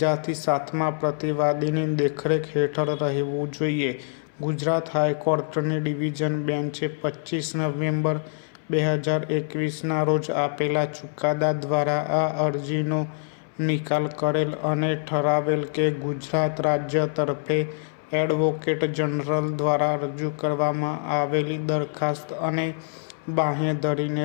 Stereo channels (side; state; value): right; silent; 62 dB below the other